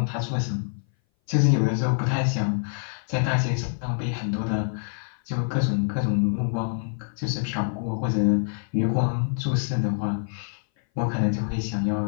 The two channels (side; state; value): right; silent; 58 dB below the other